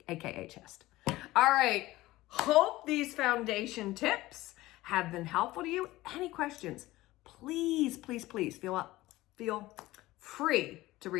AKA chest. All right. Hope these foundation tips have been helpful to you. Any questions, please, please, please feel free to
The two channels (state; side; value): quieter; right; 17.8 dB